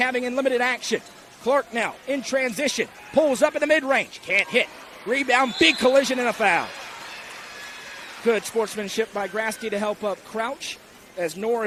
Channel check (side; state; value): both; identical; correlation 1.00